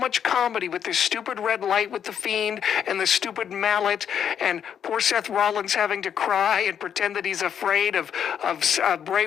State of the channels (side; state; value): right; quieter; 8.5 dB